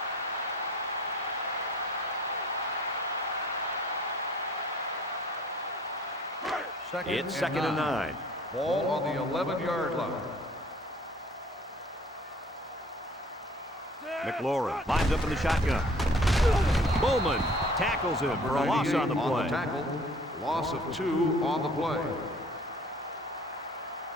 It's second and 9. Ball on the 11-yard line. McLaurin lines up in the shotgun. Bowman tackles him for a loss on the play. Tackle. Loss of 2 on the play.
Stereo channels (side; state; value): both; normal; correlation 0.52